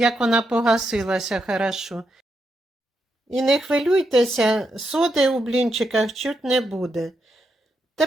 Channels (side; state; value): both; normal; correlation 0.82